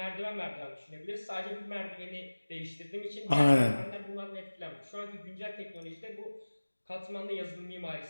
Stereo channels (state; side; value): inverted; both; correlation -1.00